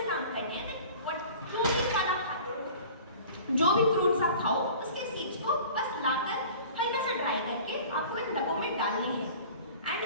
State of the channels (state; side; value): inverted; both; correlation -0.43